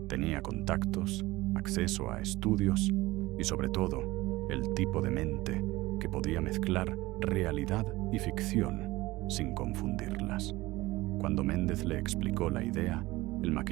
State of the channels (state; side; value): quieter; left; 19.3 dB